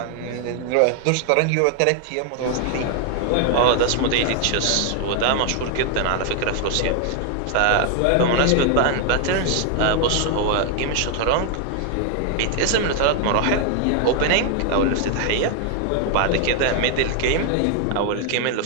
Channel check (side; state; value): both; different; correlation 0.00